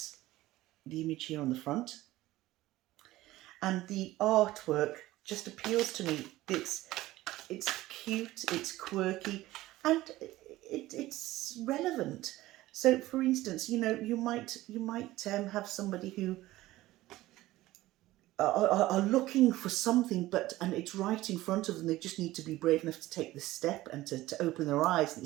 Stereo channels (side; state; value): left; quieter; 16.9 dB